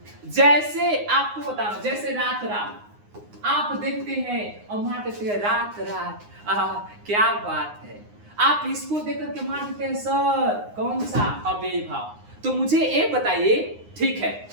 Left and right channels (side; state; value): left; late; 9.7 ms